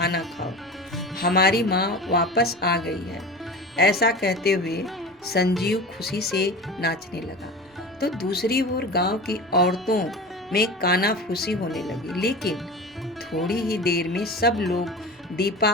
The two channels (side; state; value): both; normal; correlation 0.32